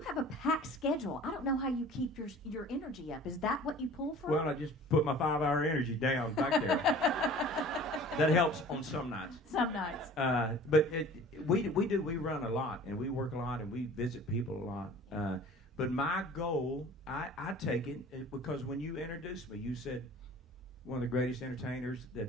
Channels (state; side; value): normal; both; correlation 0.45